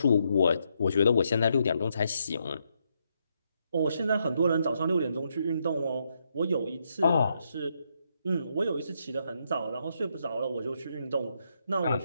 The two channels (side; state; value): both; inverted; correlation -0.78